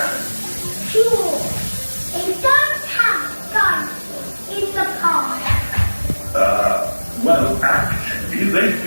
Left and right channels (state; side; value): inverted; both; correlation -1.00